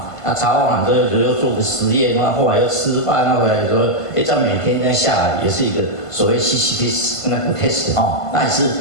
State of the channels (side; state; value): right; late; 1.5 ms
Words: 那查完之后又做个实验，然后后来又吃饭，那回来说，这样每天这样下来也是一个所谓西西里斯那个 test 哈，那也是